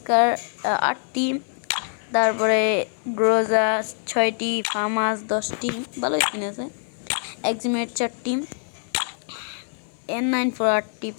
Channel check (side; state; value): right; silent; 60 dB below the other